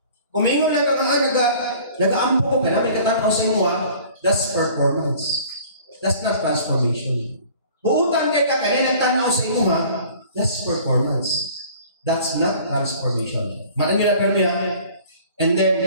Kung may lang ka nag-aampo ko, kaya may katanaw sa imo, that's performance. That's not transformation. Buutan kay ka, kaya nagtanaw sa imo, that's performance. That's not transformation. Mana nila permi And then,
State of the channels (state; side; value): inverted; both; correlation -0.49